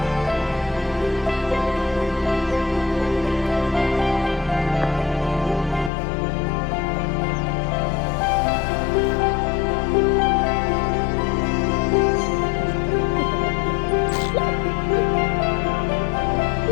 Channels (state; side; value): drops out; right; at 5.9 s